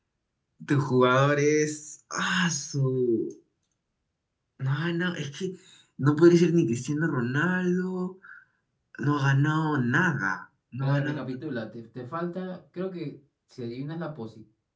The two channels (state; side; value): identical; both; correlation 1.00